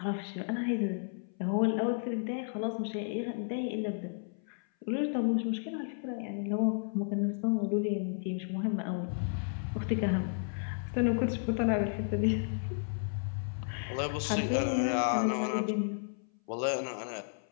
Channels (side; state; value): right; silent; 56 dB below the other